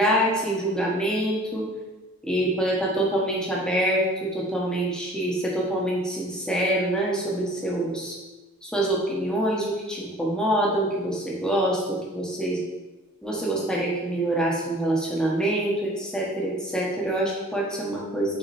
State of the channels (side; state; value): both; normal; correlation 0.49